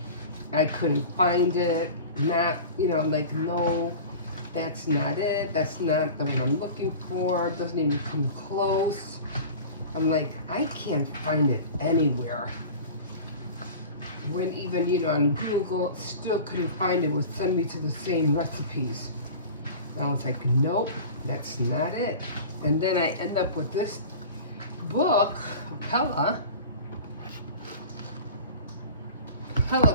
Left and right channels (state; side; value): inverted; both; correlation -0.37